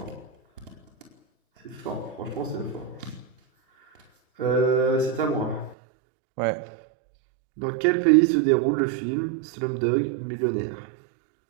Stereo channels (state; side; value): drops out; left; at 5.8 s